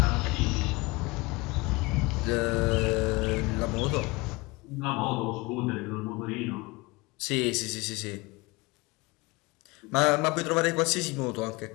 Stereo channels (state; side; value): quieter; right; 24.2 dB